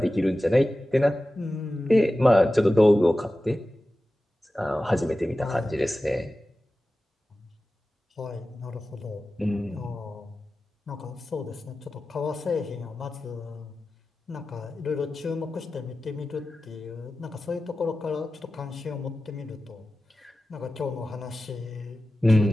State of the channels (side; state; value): both; normal; correlation 0.95